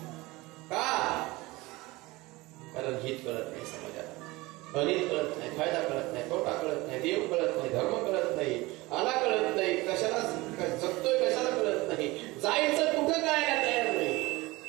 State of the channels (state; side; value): quieter; left; 21.4 dB